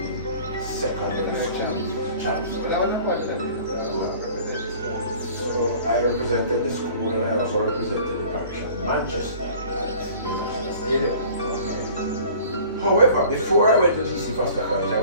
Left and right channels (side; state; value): both; inverted; correlation -0.48